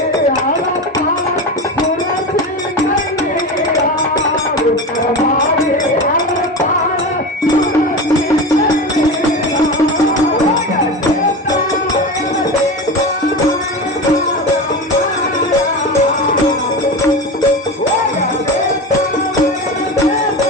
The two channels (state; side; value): normal; both; correlation 0.25